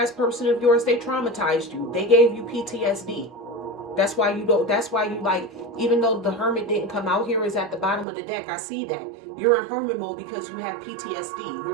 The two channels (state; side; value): drops out; left; at 8.1 s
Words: person of yours, they traumatized you. They gave you PTSD. That's why you don't, that's why you like, even though the Hermit didn't come out here, is at the bottom of the deck. I see that. You're in Hermit mode because you have PTSD.